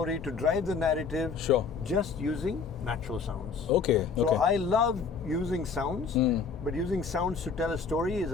to drive the narrative, just using natural sounds. Okay. So I love using sounds, but using sounds to tell a story is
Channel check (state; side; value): quieter; right; 5.4 dB